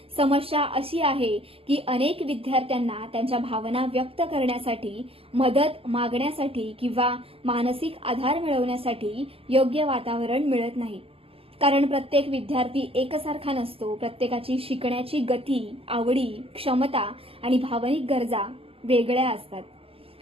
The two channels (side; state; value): left; late; 0.27 ms